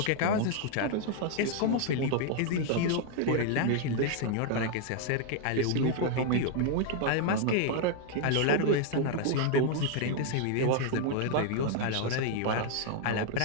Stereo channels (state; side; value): different; both; correlation 0.00